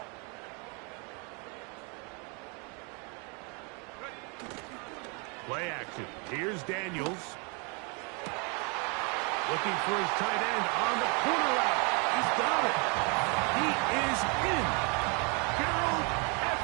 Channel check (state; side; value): quieter; left; 33.3 dB